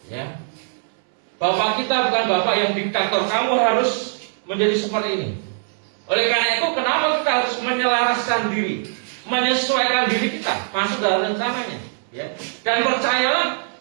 ya. Bapak kita bukan bapak yang diktator, kamu harus menjadi seperti ini. Oleh karena itu, kenapa kita harus menyelaraskan diri, menyesuaikan diri kita masuk dalam rencananya ya. Dan percayalah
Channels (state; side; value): silent; left; 65 dB below the other